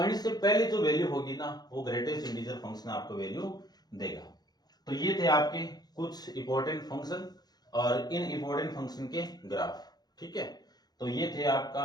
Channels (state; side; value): late; right; 0.19 ms